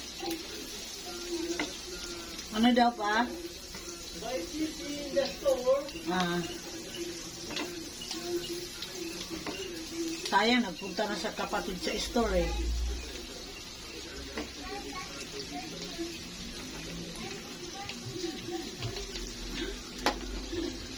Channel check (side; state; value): both; identical; correlation 1.00